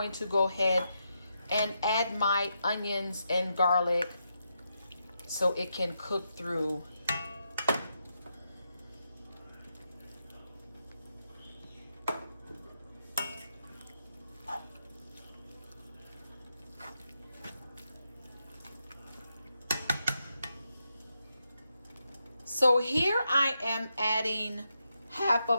to go ahead and add my onions and garlic so it can cook through. So here I am adding half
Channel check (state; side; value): inverted; both; correlation -0.84